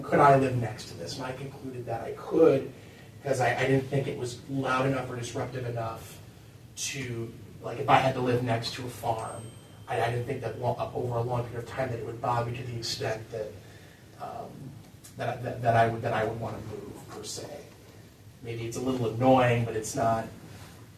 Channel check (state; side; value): identical; both; correlation 1.00